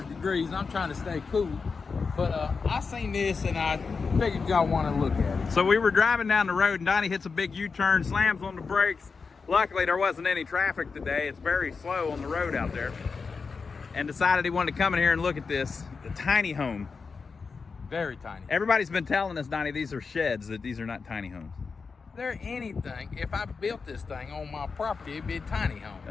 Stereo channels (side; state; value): right; quieter; 4.9 dB